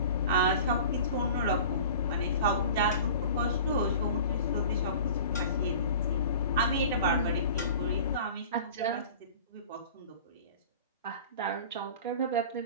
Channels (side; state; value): both; inverted; correlation -0.40